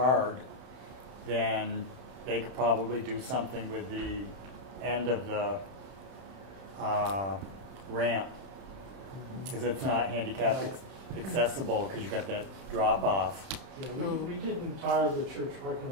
then they could probably do something with the end of the ramp. Because it's not handicap accessible because you got that drop off. Yeah, we didn't tar the church parking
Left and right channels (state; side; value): late; left; 31 ms